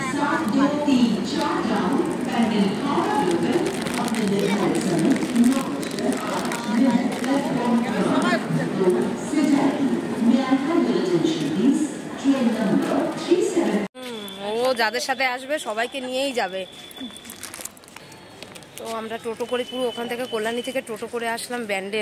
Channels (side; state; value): both; identical; correlation 1.00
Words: ও যাদের সাথে আসবে সবাইকে নিয়েই যাবে। তো আমরা টোটো করে পুরো ওখান থেকে কল্যাণী থেকে টোটো করে আসলাম